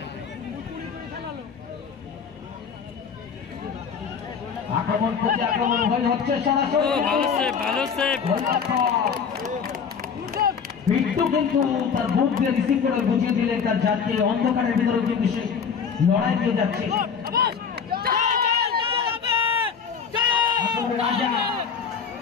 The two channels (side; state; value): right; quieter; 6.6 dB